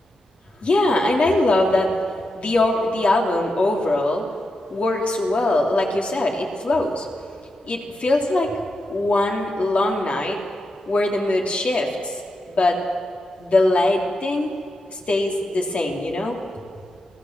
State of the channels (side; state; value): both; normal; correlation 0.87